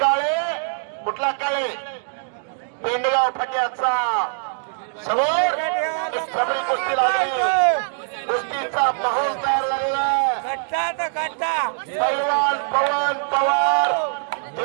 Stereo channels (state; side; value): silent; left; digital silence